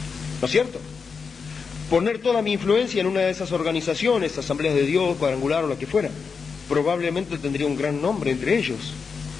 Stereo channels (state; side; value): quieter; right; 5.4 dB